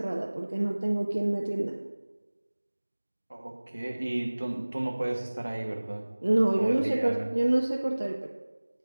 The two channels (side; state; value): both; inverted; correlation -1.00